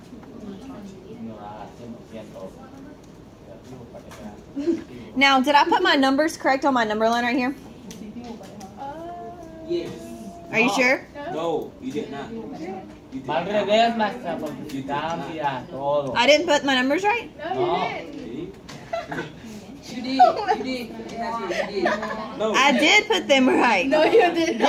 Now, did I put my numbers correct on my number line right here? Yes. Are you sure? No, you did not. Va al revés, maestra, porque cambia todo. I didn't put my numbers right? No. You did. You did. You did. No. I did put them right. No, you did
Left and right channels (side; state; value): both; identical; correlation 1.00